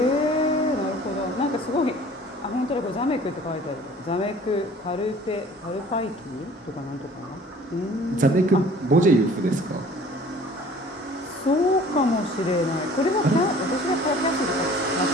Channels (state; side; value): normal; both; correlation 0.50